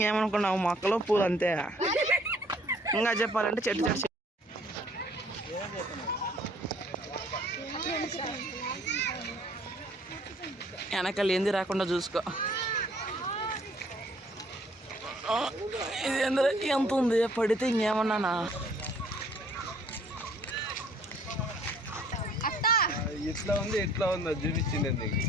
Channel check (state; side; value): normal; both; correlation 0.59